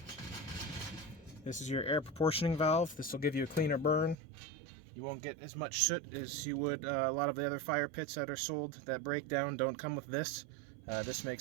This is your air proportioning valve. This will give you a cleaner burn. You won't get as much soot as you would a lot of the other fire pits that are sold that break down don't come with this. This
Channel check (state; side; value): drops out; left; at 4.2 s